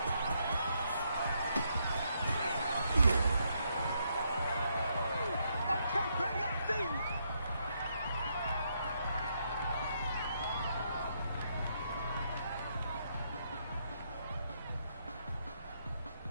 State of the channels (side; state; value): both; inverted; correlation -0.77